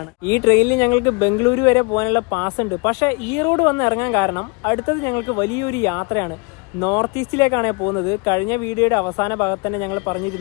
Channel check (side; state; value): right; quieter; 31.5 dB